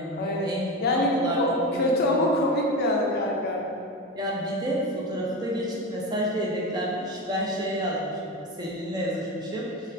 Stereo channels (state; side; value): normal; both; correlation 0.22